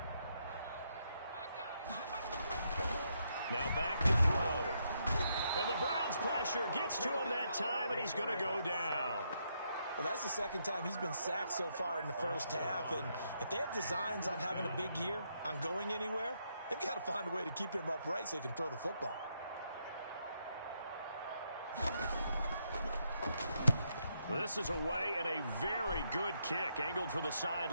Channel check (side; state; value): both; inverted; correlation -0.78